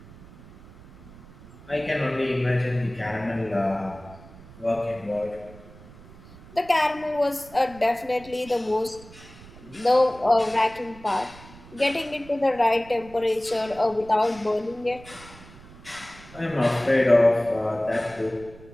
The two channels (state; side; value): noise; right; rumble, 20 dB below the sound